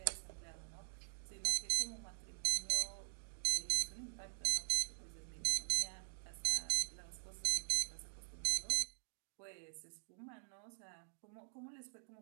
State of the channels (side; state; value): left; silent; digital silence